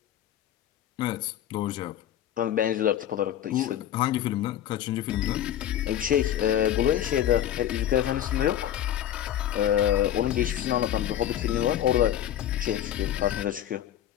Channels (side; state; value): right; quieter; 11.2 dB